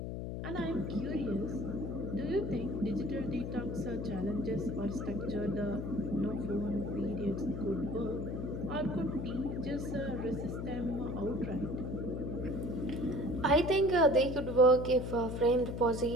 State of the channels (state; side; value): noise; left; hum, 4 dB below the sound